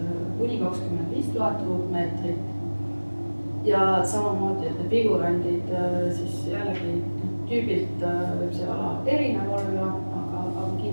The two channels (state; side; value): inverted; both; correlation -1.00